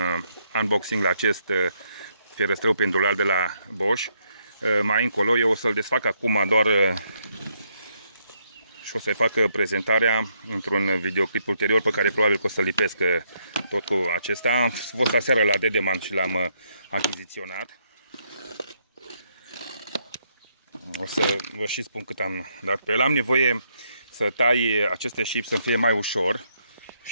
unboxing la acest fierăstrău pendular de la Bosch. Mai încolo eu o să-l desfac acum doar și o să-i fac prezentarea într-un videoclip ulterior pe care probabil că o să-l lipesc tot cu acesta. Am fost aseară la Dedeman și l-am achiziționat. O să vă și spun cât am dat pe el. Am nevoie să tai aceste șipi să fie mai ușor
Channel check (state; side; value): inverted; both; correlation -0.74